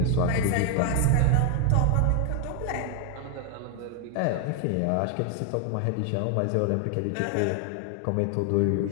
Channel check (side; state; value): both; different; correlation 0.00